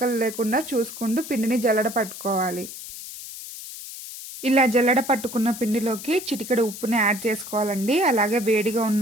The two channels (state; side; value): noise; left; hiss, 12 dB below the sound